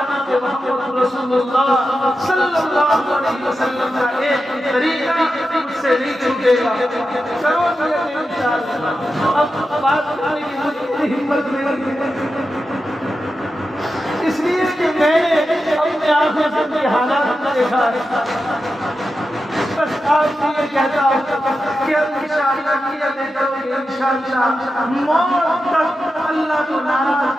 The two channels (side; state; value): both; normal; correlation 0.90